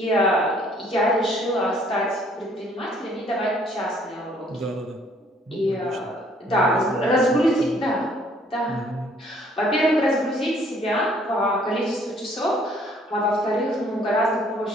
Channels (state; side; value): normal; both; correlation 0.61